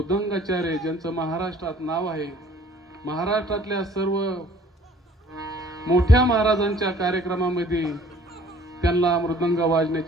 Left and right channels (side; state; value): both; normal; correlation 0.55